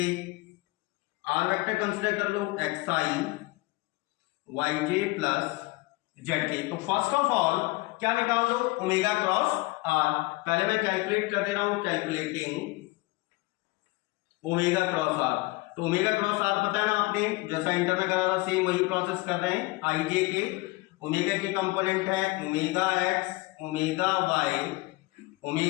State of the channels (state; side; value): quieter; right; 22.4 dB